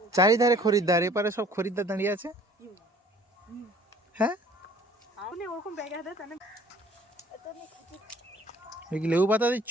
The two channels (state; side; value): normal; both; correlation 0.54